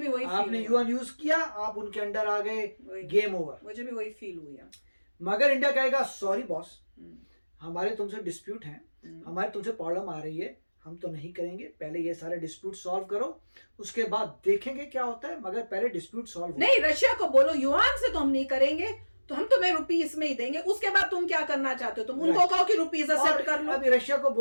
वही आपने युआन यूज किया, आप उनके अंडर आ गए, गेम ओवर। मुझे भी वही फील हुई। मगर इंडिया कहेगा सॉरी बॉस, हमारे तुमसे डिस्प्यूट हैं, हमारे तुमसे प्रॉब्लम आ रही है, हम तो नहीं करेंगे। पहले ये सारे डिस्प्यूट सॉल्व करो, उसके बाद देखेंगे क्या होता है, मगर पहले डिस्प्यूट सॉल्व नहीं। रशिया को बोलो युआन से तो हम नहीं करेंगे, तो हम तुम्हें रुपीस में ही देंगे। उसके बाद तुम क्या करना चाहते हो? तुम उनको कहो कि रुपीस एक्सेप्ट कर लो। अभी रशिया को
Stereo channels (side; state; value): both; inverted; correlation -1.00